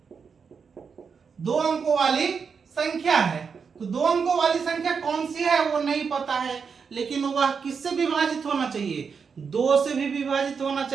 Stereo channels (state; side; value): quieter; left; 5.9 dB